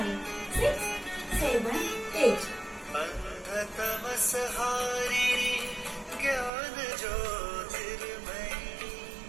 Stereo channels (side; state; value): left; drops out; at 6.5 s